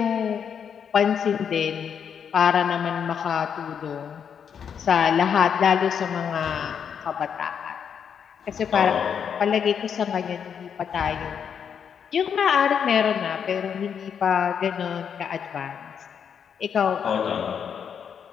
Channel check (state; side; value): quieter; right; 7.5 dB